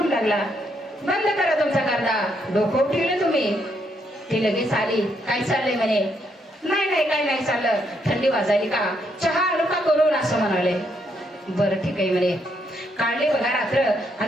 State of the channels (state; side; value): normal; both; correlation 0.75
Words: लागला बंद करा तुमचा गर्दा, डोकं उठवले तुम्ही. ती लगेच आली, काय चाललंय म्हणे. नाही नाही काय नाही चाललं, थंडी वाजायली का, चहा आणू का करून, असं म्हणाले. बरं ठीक आहे म्हणे. काढले बघा रात्र